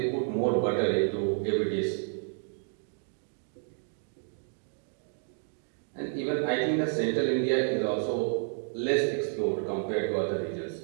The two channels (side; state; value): left; silent; 55 dB below the other